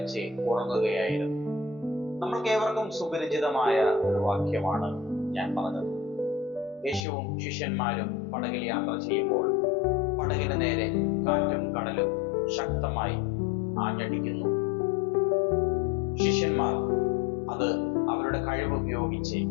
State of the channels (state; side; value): drops out; right; at 7.1 s